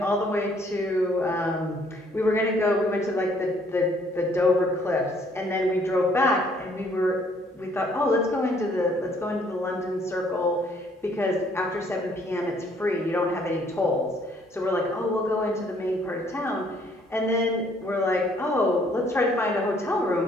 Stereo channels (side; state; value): both; normal; correlation 0.64